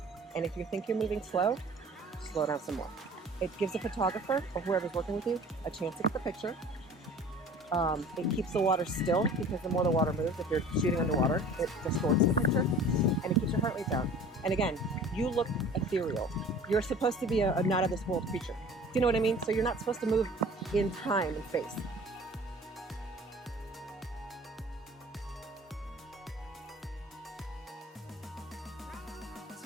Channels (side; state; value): both; normal; correlation 0.45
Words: And if you think you're moving slow, slow down some more. It gives a photographer or whoever's working with you a chance to get the picture. It keeps the water still, because the more the water moves, if you're shooting underwater, it distorts the picture, and it keeps your heart rate down. And again, you look ethereal. You're supposed to be a not of this world creature. Do you know what I mean? So you're not supposed to move in time and space.